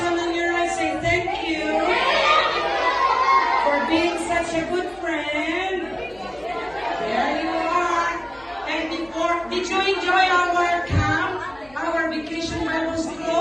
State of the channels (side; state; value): left; noise; hum, 27 dB below the sound